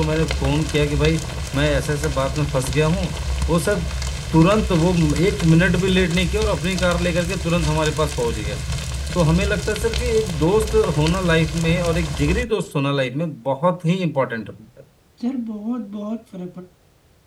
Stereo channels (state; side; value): identical; both; correlation 1.00